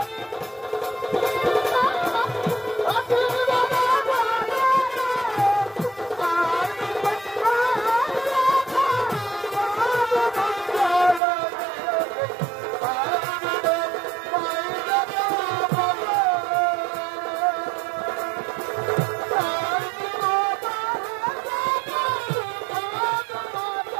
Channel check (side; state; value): left; drops out; at 11.2 s